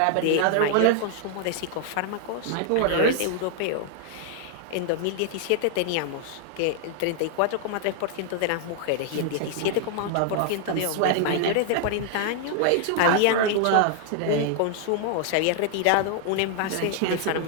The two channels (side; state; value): both; different; correlation 0.00